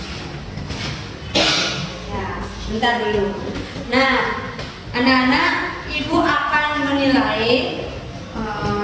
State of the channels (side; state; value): both; identical; correlation 1.00